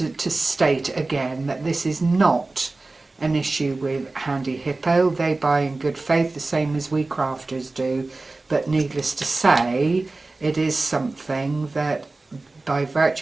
to state again that this is not an issue with Handyhippo. They buy in good faith, the same as we crafters do, but needless to say, it is something that, by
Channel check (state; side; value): quieter; left; 3.3 dB